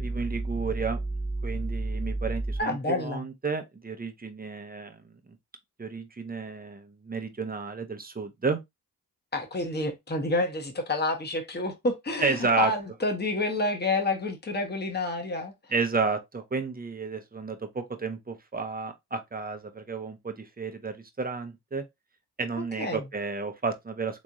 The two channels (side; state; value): both; normal; correlation 0.18